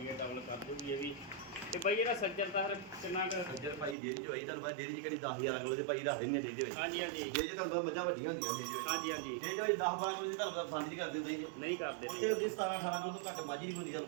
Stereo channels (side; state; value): left; drops out; at 4.0 s